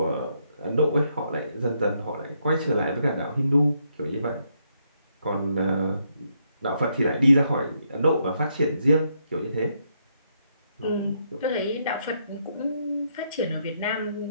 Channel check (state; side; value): inverted; both; correlation -0.76